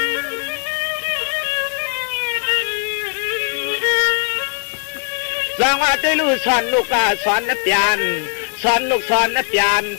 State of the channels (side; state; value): right; silent; 56 dB below the other